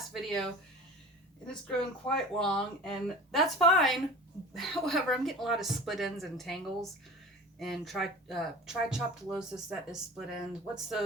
video, and it's grown quite long, and that's fine. However, I'm getting a lot of split ends and tangles, and trichoptilosis, that is split ends. What's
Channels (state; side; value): normal; both; correlation 0.38